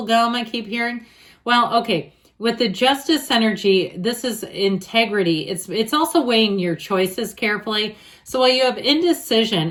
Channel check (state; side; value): identical; both; correlation 1.00